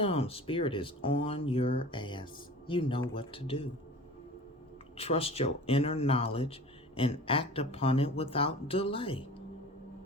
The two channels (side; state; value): both; normal; correlation 0.39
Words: Spirit is on your ass. You know what to do. Trust your inner knowledge and act upon it without delay.